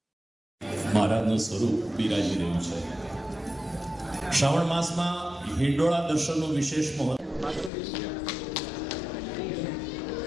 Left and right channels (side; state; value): right; drops out; at 7.7 s